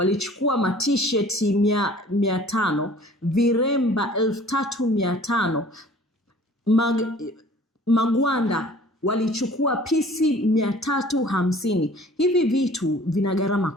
t-shirt 500, viremba 3500, magwanda walichukua pisi 350. Hivi vitu vina gharama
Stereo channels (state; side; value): normal; both; correlation 0.50